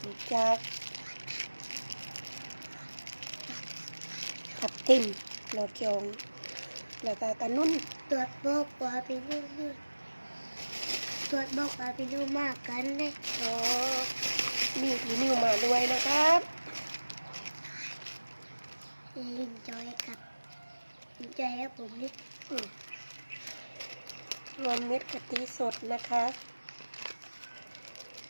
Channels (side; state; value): both; inverted; correlation -1.00